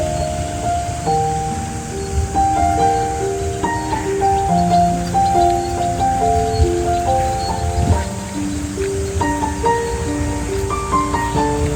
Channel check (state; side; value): identical; both; correlation 1.00